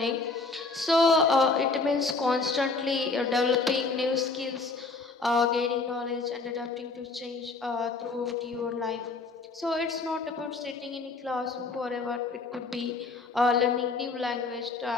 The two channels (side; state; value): right; quieter; 3.8 dB